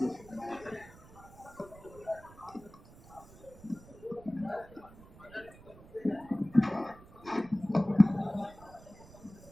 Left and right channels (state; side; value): noise; right; rumble, 21 dB below the sound